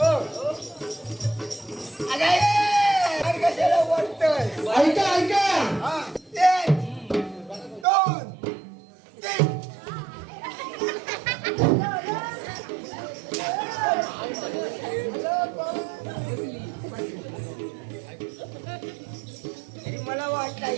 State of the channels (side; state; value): left; drops out; at 7.9 s